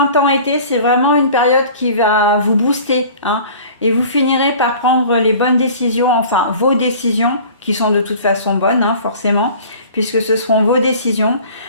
c'est vraiment une période qui va vous booster. Hein, et vous finirez par prendre les bonnes décisions, enfin vos décisions, qui sont de toute façon bonnes, hein, forcément, puisque ce seront vos décisions.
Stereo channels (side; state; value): both; inverted; correlation -0.45